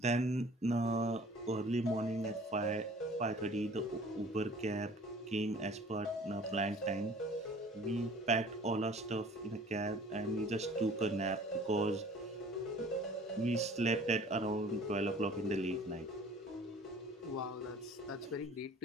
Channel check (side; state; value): both; normal; correlation 0.50